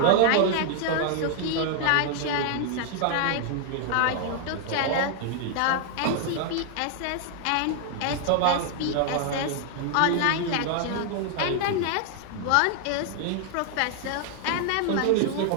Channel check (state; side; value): different; both; correlation 0.00